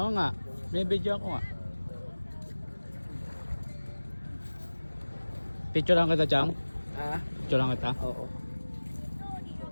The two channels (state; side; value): inverted; both; correlation -1.00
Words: nga. May video ako nga. Picture lang kita, Chang? Ah? Picture lang kita? Oo.